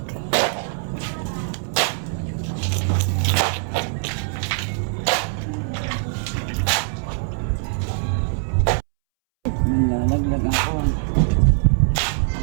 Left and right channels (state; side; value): silent; left; 64 dB below the other